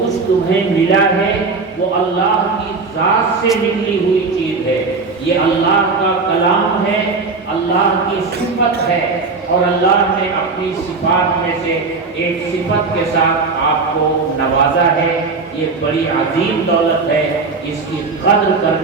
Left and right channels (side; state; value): left; quieter; 4.3 dB